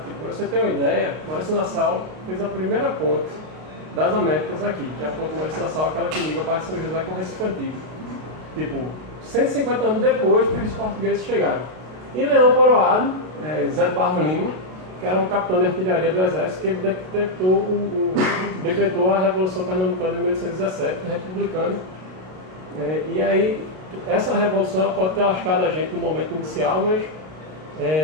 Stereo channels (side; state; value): left; late; 32 ms